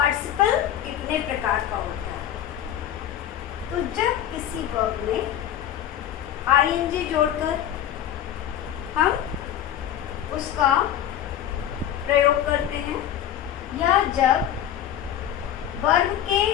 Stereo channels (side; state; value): right; quieter; 10.9 dB